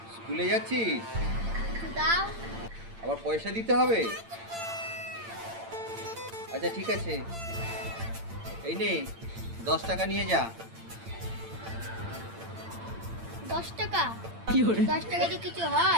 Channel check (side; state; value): left; late; 8.8 ms